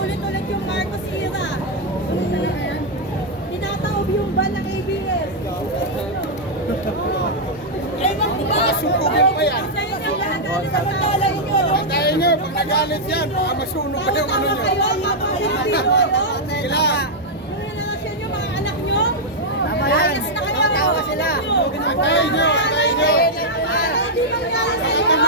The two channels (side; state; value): both; normal; correlation -0.04